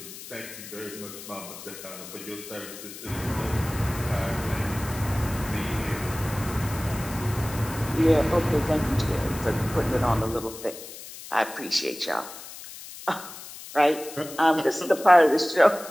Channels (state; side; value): noise; left; hiss, 14 dB below the sound